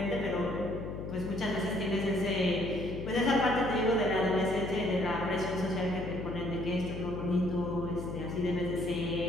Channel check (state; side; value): noise; left; hum, 7 dB below the sound